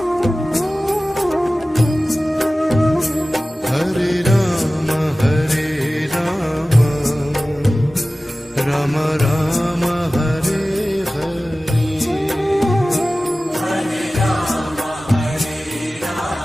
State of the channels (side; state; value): both; normal; correlation 0.96